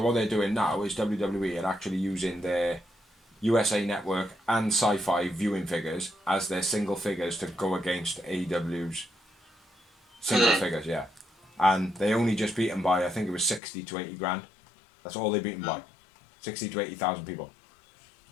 what they're doing now is WWE are actually using their USA Network and Sci-Fi viewing figures as their single figures to go against AEW's single figures, yeah. And they only just beat them by, I think it was 60 to 80 grand. That's all they beat them by. 60 to 80,000 people.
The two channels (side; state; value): right; drops out; at 13.6 s